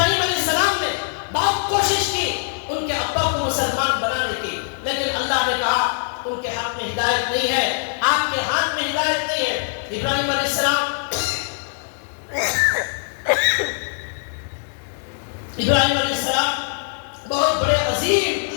علیہ السلام نے بہت کوشش کی ان کے ابا کو مسلمان بنانے کی، لیکن اللہ نے کہا ان کے ہاتھ میں ہدایت نہیں ہے، آپ کے ہاتھ میں ہدایت نہیں ہے۔ ابراہیم علیہ السلام ابراہیم علیہ السلام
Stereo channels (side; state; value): right; silent; digital silence